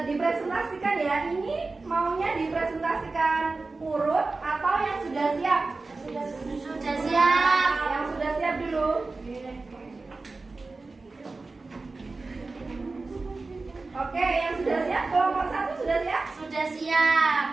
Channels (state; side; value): quieter; left; 3.7 dB